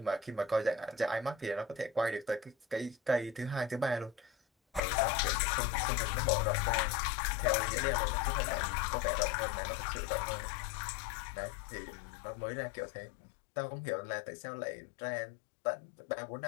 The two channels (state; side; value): drops out; right; at 4.8 s